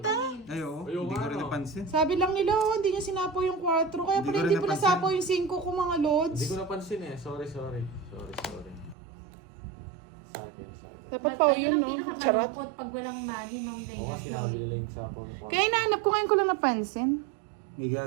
Ay, oo. Ayoko Hindi ko rin ano. napansin. Sabi lang nila, oh, hindi niya sinapo yung 4. Kaya Hindi pala ko hindi rin po napansin. nasapo yung 5 ko mga lods. Hindi ko napansin eh. Sorry. Sa akin. Dapat But pa ayun yun, ang no? Charot. pinakamalungkot pag walang money, Ma'am Oo Gaya. nga sinabi nila yung sapaw na Kaya inaanap ko ngayon ko lang napansin. May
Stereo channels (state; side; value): drops out; left; at 9.0 s